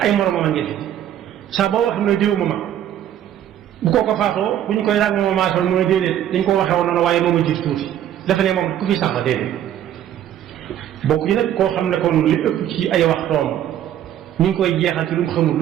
ay moromam a ngi fi saa boo wax ne diw ma mag bu kooko faatoo bu ñu koy laaj moom maasal mooy déedéet dañ ko waxee woon noonu waaye moom a jiitu tuuti dafa ne moom ku fi sax la déedéet bokk yi nag koo xam ne kon li ëpp ci ay waxtoom ñu ngi koy jeexal ci lu mu xamul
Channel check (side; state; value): left; quieter; 11.0 dB